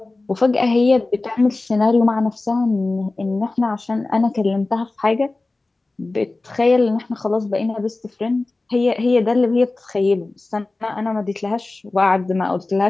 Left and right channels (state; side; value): quieter; right; 3.2 dB